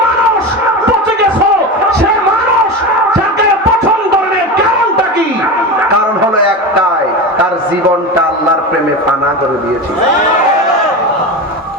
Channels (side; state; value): both; normal; correlation 0.23